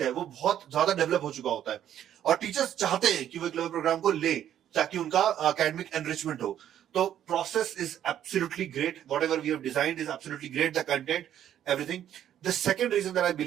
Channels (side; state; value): left; quieter; 10.7 dB